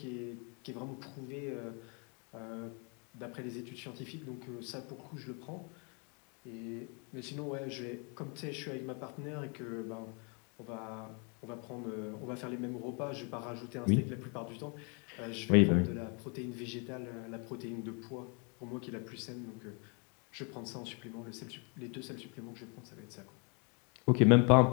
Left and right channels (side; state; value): right; quieter; 35.9 dB